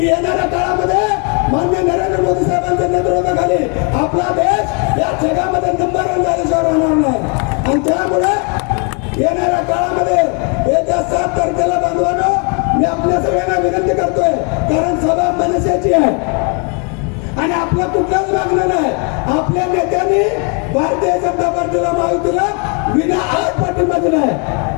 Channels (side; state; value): right; quieter; 35.3 dB